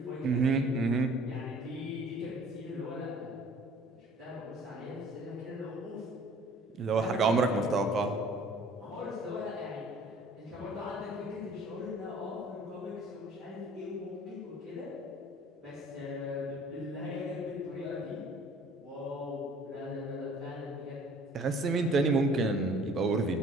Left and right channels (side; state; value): both; normal; correlation 0.52